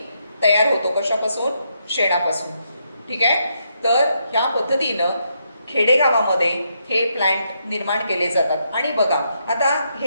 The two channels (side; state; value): both; inverted; correlation -0.78